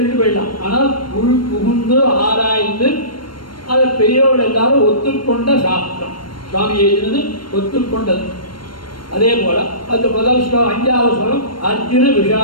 போயிடலாம். ஆனால் உள் புகுந்து ஆராய்ந்து அதை பெரியவர்கள் எல்லாரும் ஒத்துக்கொண்ட சாஸ்திரம். சுவாமி எழுதினது ஒத்துக்கொண்டது. அதே போல அந்த முதல் ஸ்லோகம் 5வது ஸ்லோகம் அர்ஜுன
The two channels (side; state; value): right; late; 0.72 ms